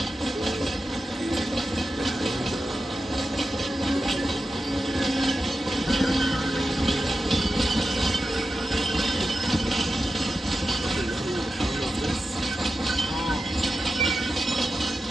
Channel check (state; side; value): normal; both; correlation 0.91